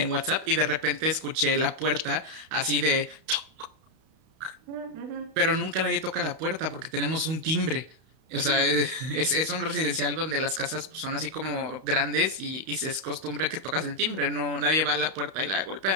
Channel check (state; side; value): late; left; 32 ms